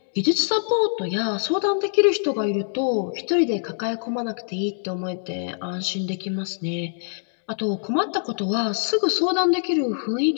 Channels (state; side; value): silent; right; digital silence